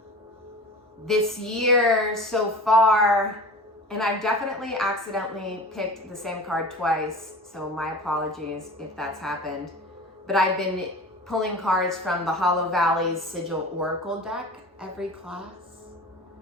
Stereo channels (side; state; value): both; normal; correlation 0.37